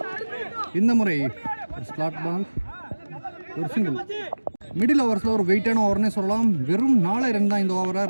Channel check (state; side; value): inverted; both; correlation -1.00